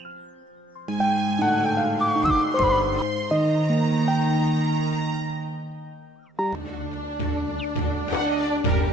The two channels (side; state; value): both; normal; correlation 0.68